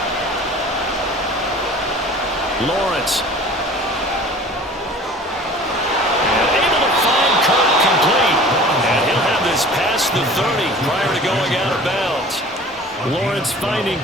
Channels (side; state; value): both; normal; correlation 0.44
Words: Lawrence. And able to find Kirk complete. And he'll have this past the 30 prior to going out of bounds. Lawrence finding